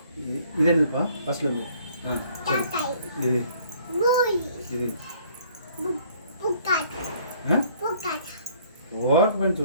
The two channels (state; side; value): inverted; both; correlation -0.60